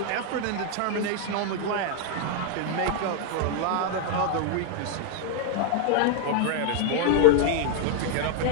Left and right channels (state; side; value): different; both; correlation 0.01